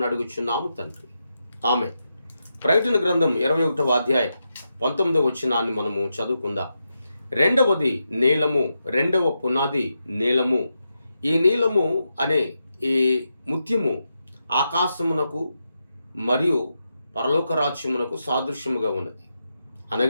అడుగుచున్నాము తండ్రి. ఆమె ప్రకటన గ్రంథం 21వ అధ్యాయం 19వ వచనాన్ని మనము చదువుకుందాం. రెండవది నీలము, రెండవ పునాది నీలము. ఈ నీలము అనే ఈ ముత్యము ఆకాశమునకు మరియు పరలోక రాజ్యమునకు సాదృశ్యముగా ఉన్నది.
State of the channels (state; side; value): inverted; both; correlation -0.86